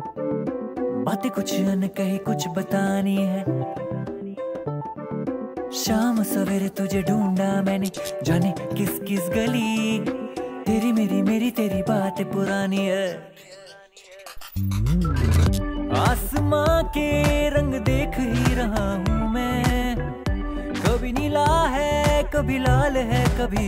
बातें कुछ अनकही कुछ बतानी है। शाम सवेरे तुझे ढूंढा मैंने, जाने किस किस गली। तेरी मेरी तेरी बातें पुरानी है। आसमां के रंग देख ही रहा हूँ मैं, कभी नीला है कभी लाल है,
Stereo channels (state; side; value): identical; both; correlation 1.00